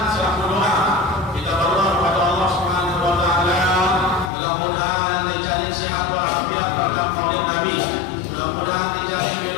selaku doa kita berdoa kepada Allah Subhanahu wa taala, mudah-mudahan dijamin sehat walafiat berkat maulid Nabi, mudah-mudahan dijamin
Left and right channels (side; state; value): right; drops out; at 4.3 s